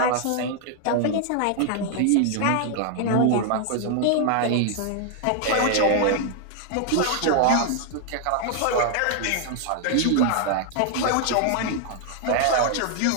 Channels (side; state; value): both; different; correlation 0.00